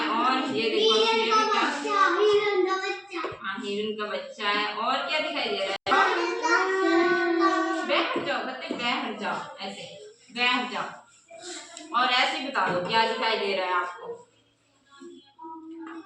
और ये देखो, हाँ, हिरन का बच्चा है। और क्या दिखाई दे रहा है? बैठ जाओ बच्चे, बैठ जाओ, ऐसे बैठ जाओ। और ऐसे बता दो क्या दिखाई दे रहा है आपको,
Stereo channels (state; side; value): identical; both; correlation 1.00